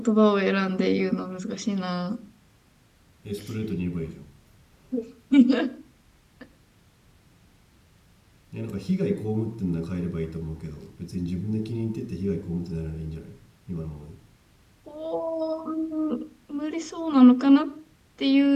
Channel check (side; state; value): both; identical; correlation 1.00